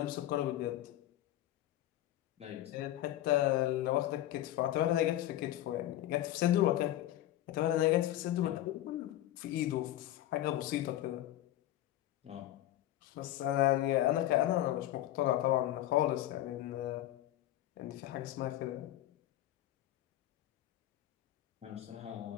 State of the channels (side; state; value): right; quieter; 13.9 dB